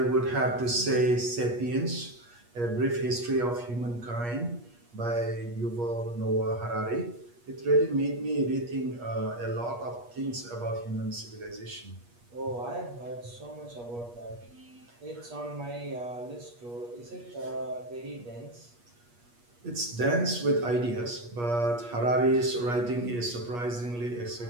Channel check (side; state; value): left; late; 8.4 ms